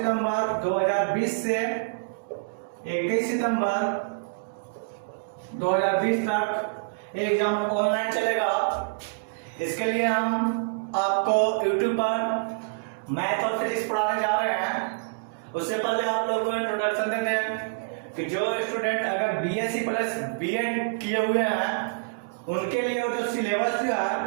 2020 से 21 सितंबर 2020 तक एग्जाम ऑनलाइन चलेगा। इसके लिए हम आपको यूट्यूब पर मैथ और फिजिक्स पढ़ाने जा रहे हैं। उससे पहले आप लोग को इंट्रोडक्शन देते हैं कि जो स्टूडेंट अगर बीएससी प्लस बीएड किए हुए हैं उनके लिए जो सिलेबस जो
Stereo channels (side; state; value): left; quieter; 35.9 dB